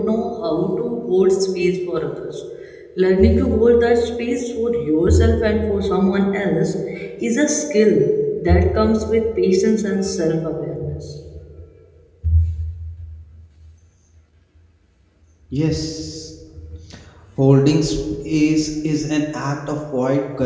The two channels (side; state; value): both; identical; correlation 1.00